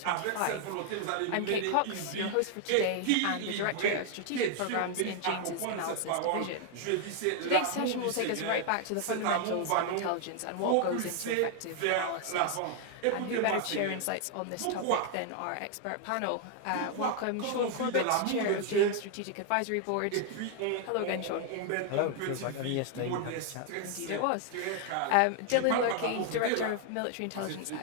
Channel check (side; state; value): both; different; correlation 0.00